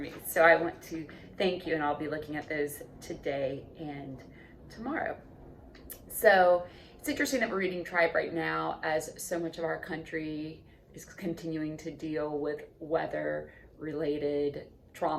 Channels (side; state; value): both; identical; correlation 1.00